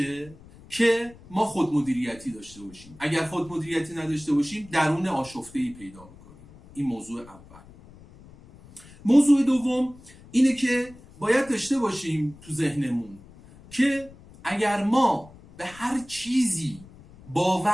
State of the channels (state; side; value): noise; left; rumble, 22 dB below the sound